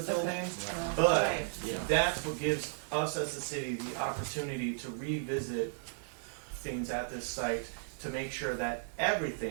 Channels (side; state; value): left; silent; 55 dB below the other